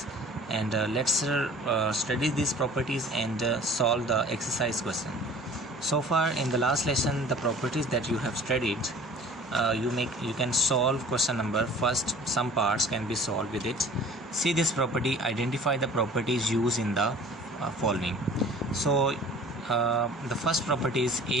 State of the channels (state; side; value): normal; both; correlation 0.46